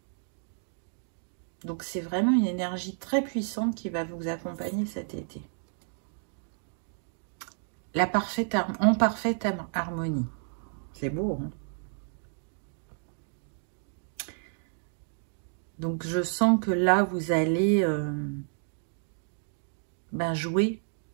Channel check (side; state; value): left; silent; digital silence